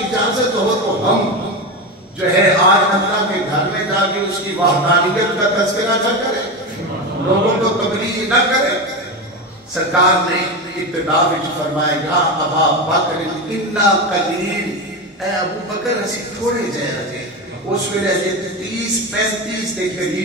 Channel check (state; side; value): normal; both; correlation 0.18